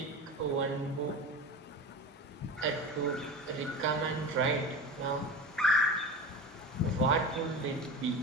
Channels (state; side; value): normal; both; correlation 0.30